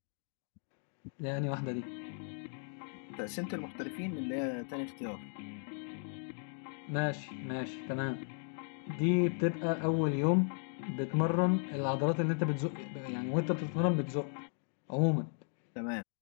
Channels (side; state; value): right; silent; 54 dB below the other